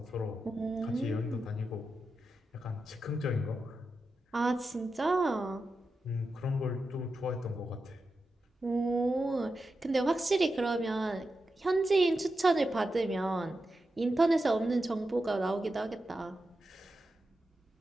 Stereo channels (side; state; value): both; normal; correlation 0.89